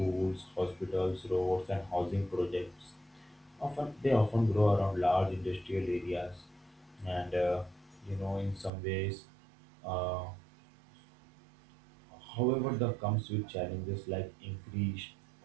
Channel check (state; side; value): drops out; left; at 8.7 s